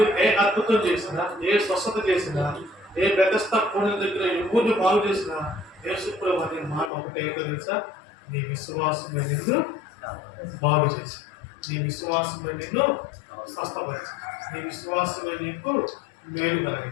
ఏ అద్భుతం చేసినా, ఏ స్వస్థత చేసినా ఏ బెతస్తా కోణం దగ్గర ఎవరిని బాగు చేసినా యేసుప్రభు అనే మాట ఒకటే ఏంటో తెలుసా? నీ విశ్వాసమే నిన్ను బాగు చేసి, నీ విశ్వాసమే నిన్ను స్వస్థపరిచి, నీ విశ్వాసమే నీకు మేలు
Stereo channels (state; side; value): drops out; right; at 6.9 s